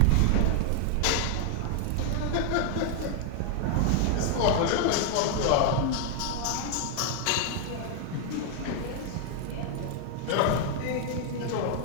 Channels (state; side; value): different; both; correlation 0.00